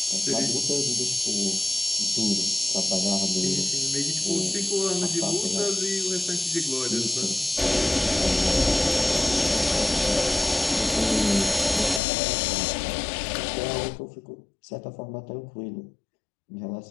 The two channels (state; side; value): drops out; right; at 12.0 s